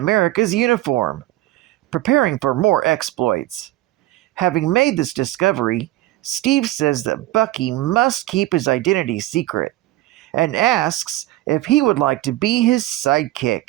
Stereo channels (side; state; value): left; quieter; 16.4 dB